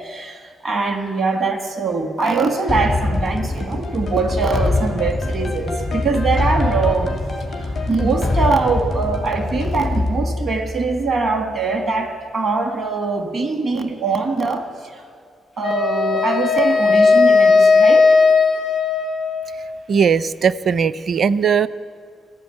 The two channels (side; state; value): both; normal; correlation 0.77